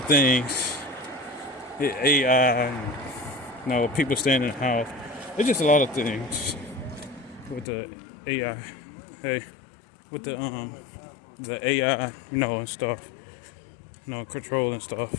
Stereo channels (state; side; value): drops out; right; at 7.7 s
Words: things. AI, people staying in the house. It's just a lot of things with the AI. Hey, with the AI, and stuff. Control and stuff.